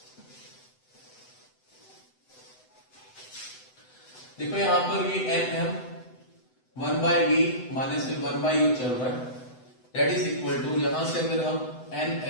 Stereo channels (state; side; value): late; right; 7.9 ms